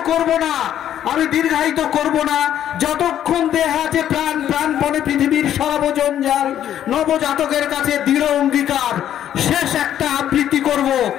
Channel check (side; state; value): right; quieter; 10.8 dB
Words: করব না, যতক্ষণ দেহ আছে প্রাণ প্রাণপণে পৃথিবীর সর্বজঞ্জাল নবজাতকের কাছে দৃঢ় অঙ্গীকার। শেষ একটা আবৃত্তি করব